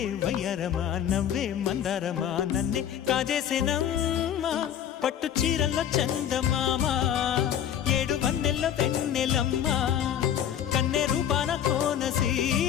వయ్యారమా నవ్వే మందారమా నన్నే కాజేసేనమ్మా పట్టు చీరల్లో చందమామా ఏడు వన్నెల్లో వెన్నెలమ్మా కన్నె రూపాన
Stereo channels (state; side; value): quieter; right; 9.8 dB